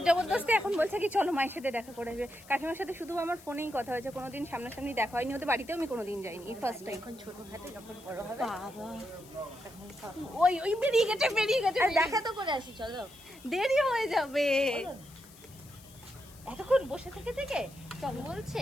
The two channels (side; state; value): left; noise; hiss, 22 dB below the sound